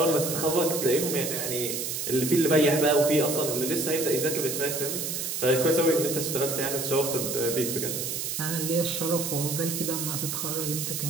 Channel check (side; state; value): right; noise; hiss, 3 dB below the sound